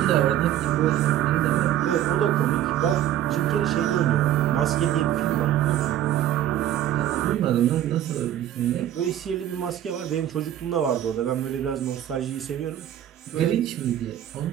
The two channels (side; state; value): left; quieter; 11.7 dB